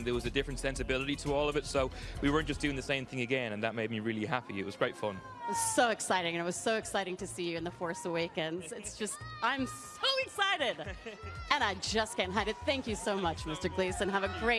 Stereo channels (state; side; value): identical; both; correlation 1.00